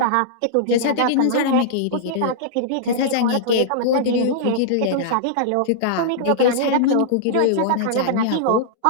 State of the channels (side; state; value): both; different; correlation -0.02